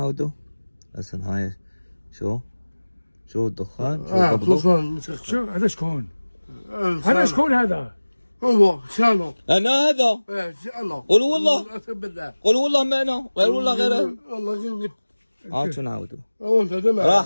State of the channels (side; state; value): both; inverted; correlation -1.00